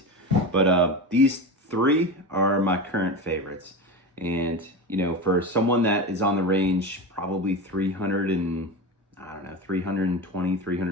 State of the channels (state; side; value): normal; both; correlation 0.24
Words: But these three are my current favorites. And, for someone that is on the range, probably 320,